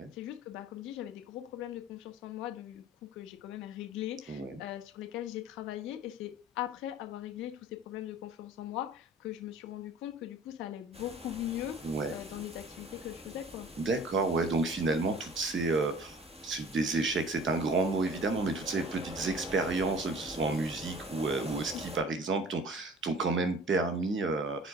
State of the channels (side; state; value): both; normal; correlation 0.46